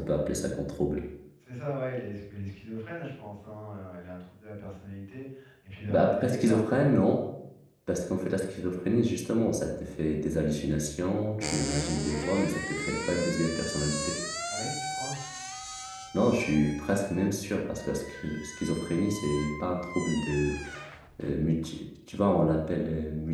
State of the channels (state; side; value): identical; both; correlation 1.00